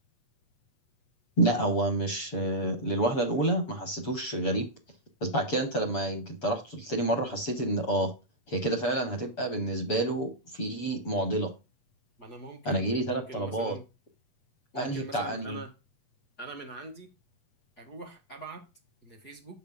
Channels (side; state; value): right; late; 8.3 ms